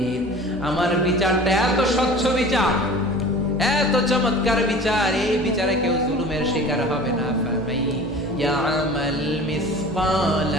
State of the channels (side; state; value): both; normal; correlation 0.41